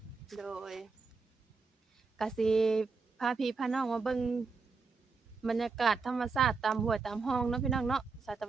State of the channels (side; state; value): left; quieter; 4.6 dB